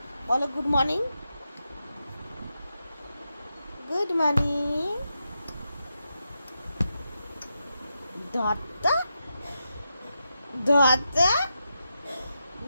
বলো, গুড মর্নিং, গুড মর্নিং। দত্তা দত্তা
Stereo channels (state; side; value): inverted; both; correlation -0.87